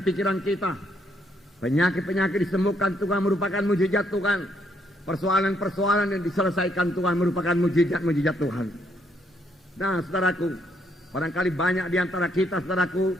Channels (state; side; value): normal; both; correlation 0.72